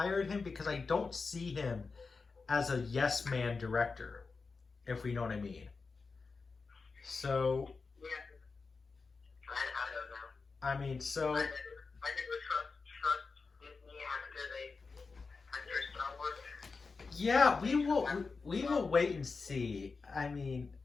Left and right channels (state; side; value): quieter; right; 4.5 dB